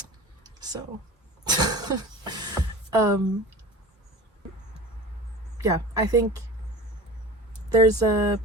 So, yeah, I think there's a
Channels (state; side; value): normal; both; correlation 0.36